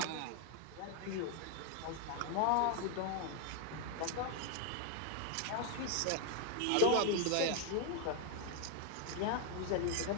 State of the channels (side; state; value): both; different; correlation 0.01